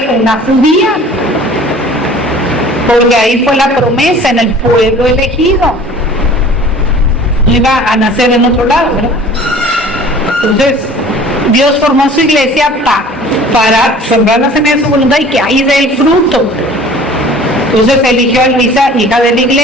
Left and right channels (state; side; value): normal; both; correlation 0.47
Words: una judía. Porque ahí fue la promesa, en el pueblo elegido. No iba a nacer en otro lado, ¿verdad? Entonces, Dios formó su iglesia para sembrar la semilla de su voluntad y que ahí dé el fruto. Entonces eligió a Luisa, hija de la